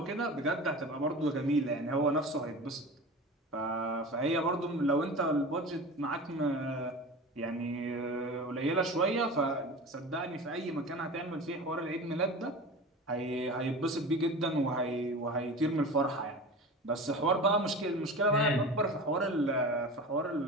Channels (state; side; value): normal; both; correlation 0.33